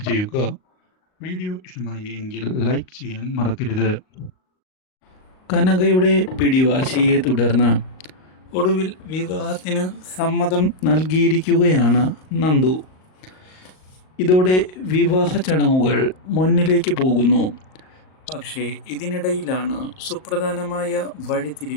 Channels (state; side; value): late; right; 38 ms